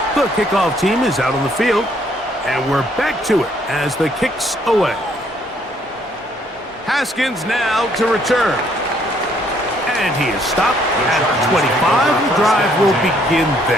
The kickoff team is out on the field, and we're back to it as the kick's away. Haskins now to return. And he is stopped at 25. The drive will begin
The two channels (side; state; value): both; normal; correlation 0.66